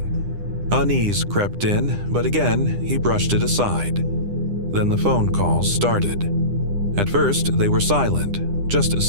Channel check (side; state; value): left; late; 9.9 ms